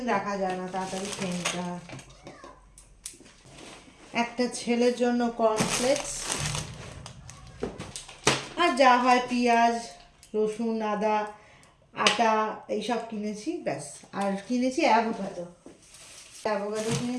রাখা যায় না, তাড়াতাড়ি খেয়ে নিতে হয়। একটা ছেলের জন্য কর্নফ্লেক্স, আর যা হয় পেঁয়াজ, রসুন, আদা, আটা এইসব কিনেছি, ব্যাস। আর কিনেছি অ্যাভোকাডো, অ্যাভোকাডো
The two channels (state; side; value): identical; both; correlation 1.00